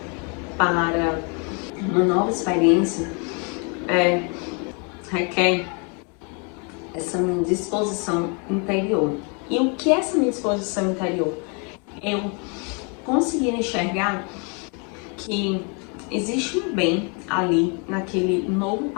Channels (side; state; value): right; quieter; 35.3 dB